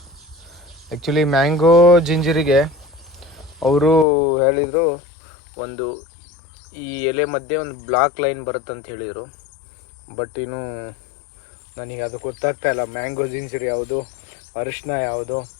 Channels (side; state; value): right; drops out; at 4.0 s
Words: ಆ್ಯಕ್ಚುಲಿ ಮ್ಯಾಂಗೋ ಜಿಂಜರಿಗೆ ಅವರು ಹೇಳಿದರು, ಒಂದು ಈ ಎಲೆ ಮಧ್ಯೆ ಒಂದು ಬ್ಲಾಕ್ ಲೈನ್ ಬರುತ್ತೆ ಅಂತ ಹೇಳಿದರು. ಬಟ್ ಇನ್ನು ನನಗೆ ಅದು ಗೊತ್ತಾಗ್ತಾಯಿಲ್ಲ, ಮ್ಯಾಂಗೋ ಜಿಂಜರ್ ಯಾವುದು, ಅರಿಶಿನ ಯಾವುದು